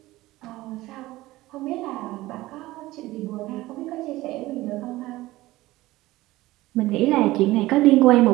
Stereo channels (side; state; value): left; quieter; 18.0 dB